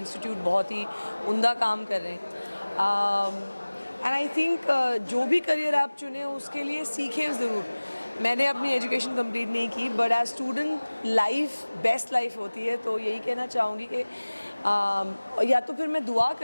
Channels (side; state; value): both; inverted; correlation -1.00